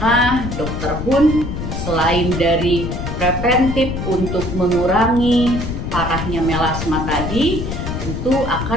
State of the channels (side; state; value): left; noise; rumble, 5 dB below the sound